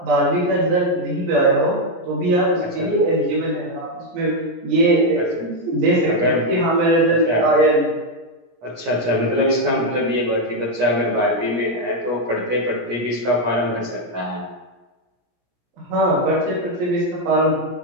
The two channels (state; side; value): late; left; 17 ms